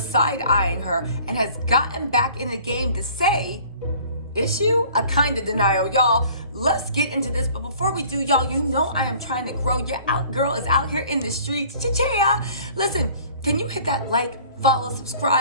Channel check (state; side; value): inverted; both; correlation -0.51